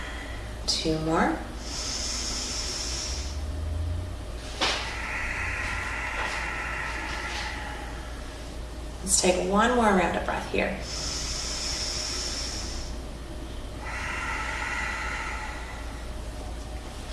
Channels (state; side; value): identical; both; correlation 1.00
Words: 2 more. Let's take 1 more round of breath here.